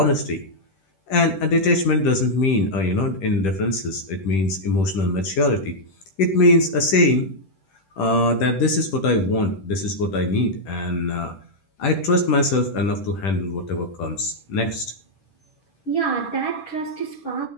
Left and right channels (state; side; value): late; right; 10 ms